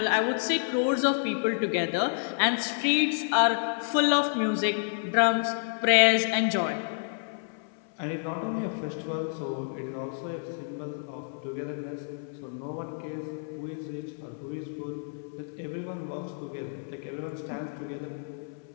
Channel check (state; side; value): silent; right; 58 dB below the other